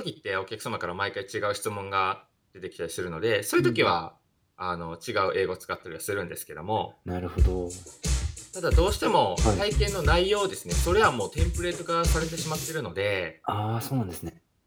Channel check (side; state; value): both; identical; correlation 1.00